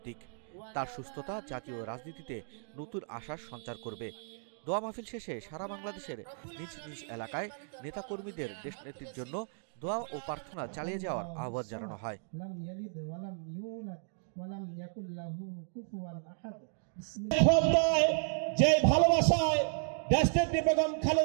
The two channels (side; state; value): left; silent; digital silence